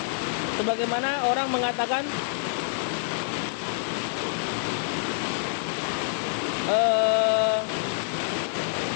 sebagaimana orang mengatakan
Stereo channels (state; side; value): silent; right; digital silence